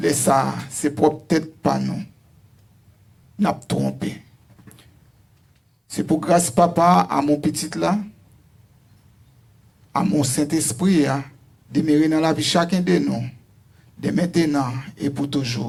Ça, c'est peut-être pas nous. N'a pas trompé. C'est pour grâce papa à mon petit là, à mon Saint-Esprit, demeurer dans la vie chacun de nous, de maintenant et pour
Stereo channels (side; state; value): both; identical; correlation 1.00